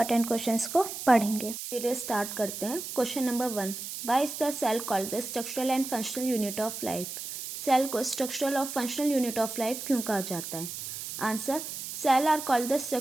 questions को पढ़ेंगे। Video start करते हैं। Question number 1, why is the cell called the structural and functional unit of life? Cell को स्ट्रक्चरल और फंक्शनल यूनिट ऑफ लाइफ क्यों कहा जाता है? Answer, cell are called the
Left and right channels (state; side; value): noise; right; hiss, 8 dB below the sound